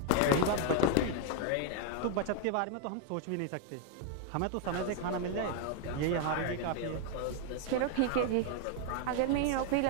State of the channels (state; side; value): different; both; correlation 0.00